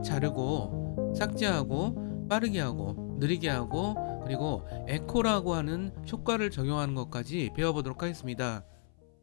자르고 삭제하고 빠르게 하고 느리게 하고 그리고 에코라고 하는 효과를 적용하는 것까지 배워보도록 하겠습니다.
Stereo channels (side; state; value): right; silent; 56 dB below the other